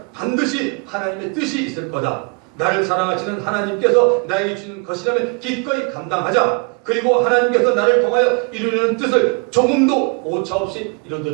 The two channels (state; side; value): quieter; left; 35.0 dB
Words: 반드시 하나님의 뜻이 있을 거다. 나를 사랑하시는 하나님께서 나에게 주는 것이라면 기꺼이 감당하자. 그리고 하나님께서 나를 통하여 이루려는 뜻을 조금도 오차없이